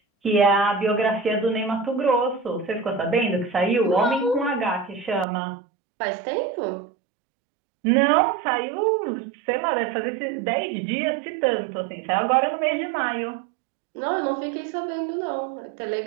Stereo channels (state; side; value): drops out; left; at 5.2 s